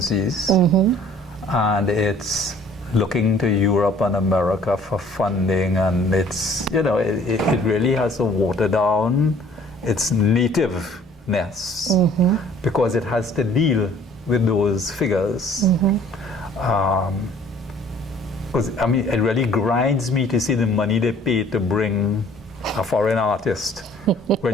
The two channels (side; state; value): both; normal; correlation 0.54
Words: and it's looking to Europe and America for funding, and it's, you know, it really has to water down its nativeness because it has to deal with those figures. Because I mean, it really grinds me to see the money they pay to bring a foreign artist